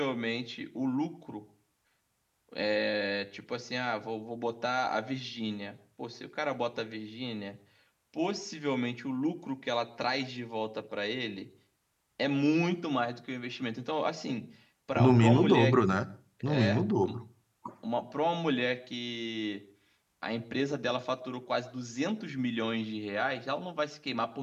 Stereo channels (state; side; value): identical; both; correlation 1.00